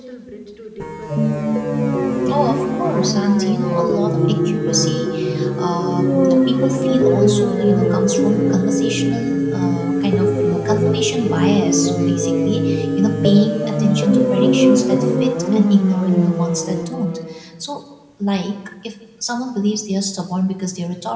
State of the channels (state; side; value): identical; both; correlation 1.00